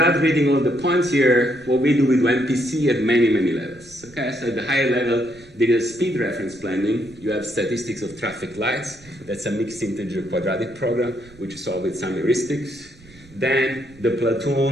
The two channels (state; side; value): noise; right; rumble, 25 dB below the sound